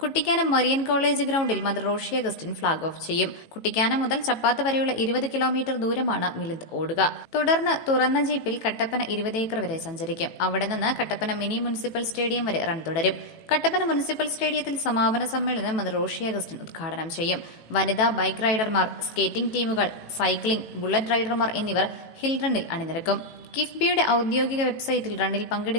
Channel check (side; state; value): right; late; 18 ms